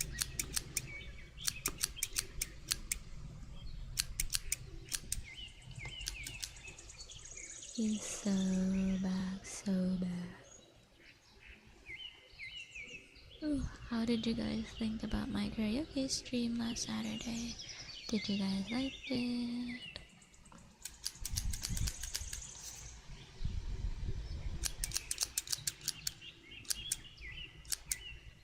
He's so bad, so bad. Ooh, how did you guys think about my karaoke stream last Saturday? Did you guys like it?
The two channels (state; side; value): identical; both; correlation 1.00